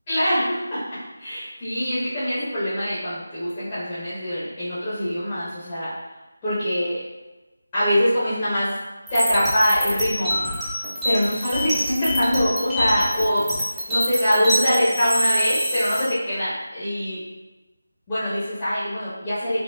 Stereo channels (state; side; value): inverted; both; correlation -0.92